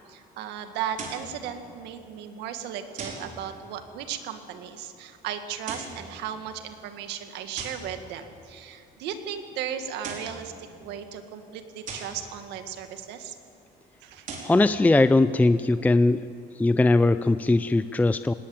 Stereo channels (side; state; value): both; normal; correlation 0.84